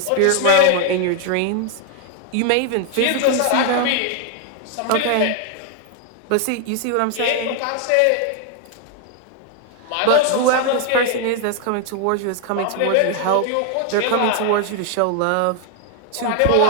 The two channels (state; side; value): different; both; correlation 0.00